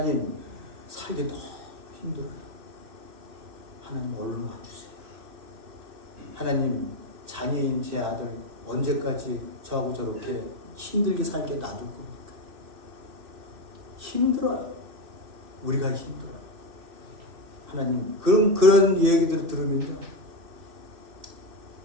살기 너무 힘들어요. 하나님 얼른 와주세요. 하나님 장애인 제 아들 언제까지 저하고 저렇게 힘들게 살게 놔둘 겁니까? 힘들어요. 우리가 힘들어요. 하나님 그런 얘기들을 들으면요,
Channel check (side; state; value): left; late; 3.0 ms